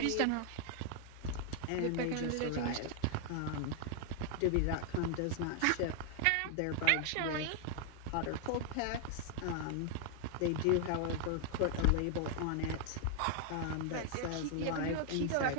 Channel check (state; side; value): different; both; correlation 0.00